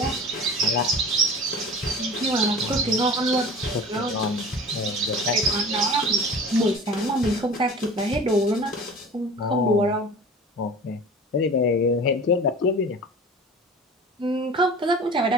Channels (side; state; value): both; normal; correlation 0.39